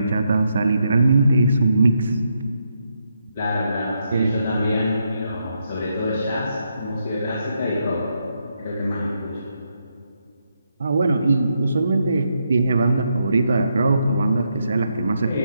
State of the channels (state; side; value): inverted; both; correlation -0.80